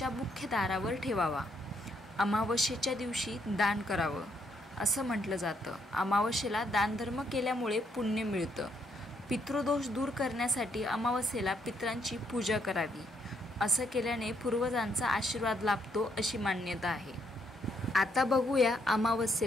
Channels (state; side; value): normal; both; correlation 0.73